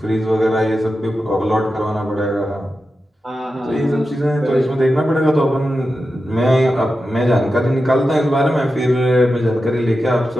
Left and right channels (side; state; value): both; normal; correlation 0.91